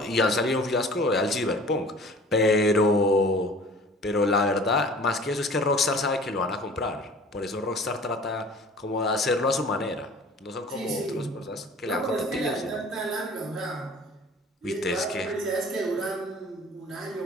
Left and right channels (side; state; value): both; normal; correlation 0.47